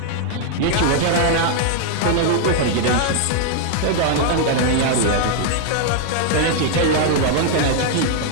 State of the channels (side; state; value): both; different; correlation 0.00